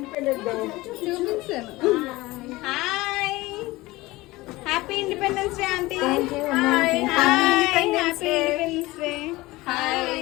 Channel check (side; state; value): right; quieter; 20.0 dB